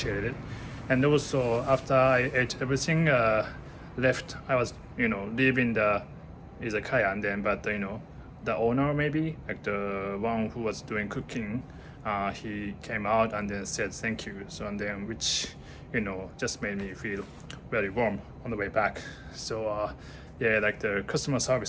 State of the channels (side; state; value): both; identical; correlation 1.00